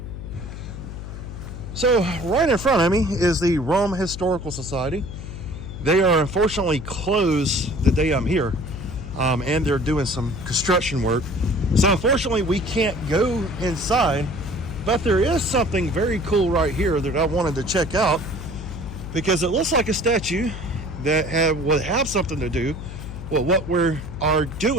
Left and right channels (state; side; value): noise; left; hum, 10 dB below the sound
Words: So right in front of me is the Rome Historical Society. They are unfortunately closed the day I'm here, and they're doing some construction work. So unfortunately we can't go inside, but there is something very cool right here that I wanted to check out because it looks like a statue that would have something to do with what we are